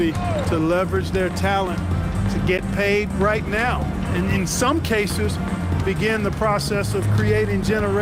to leverage their talent to get paid right now. And in some cases, begin the process of creating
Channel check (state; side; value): identical; both; correlation 1.00